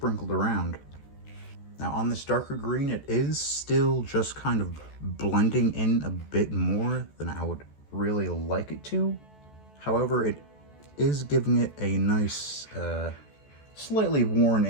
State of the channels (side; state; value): right; late; 14 ms